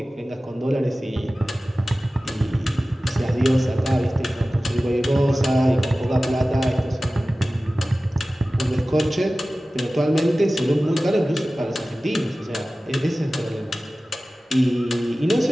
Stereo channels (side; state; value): both; normal; correlation 0.96